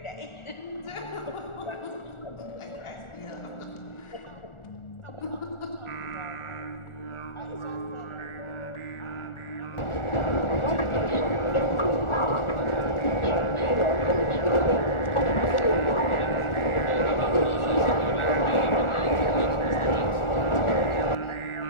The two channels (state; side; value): late; right; 1.4 ms